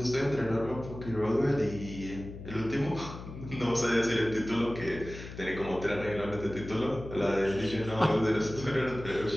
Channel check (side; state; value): left; noise; hum, 12 dB below the sound